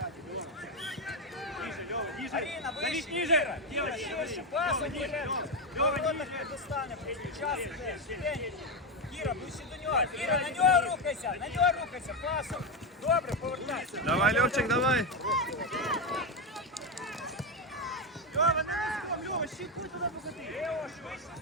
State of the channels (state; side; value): normal; both; correlation 0.09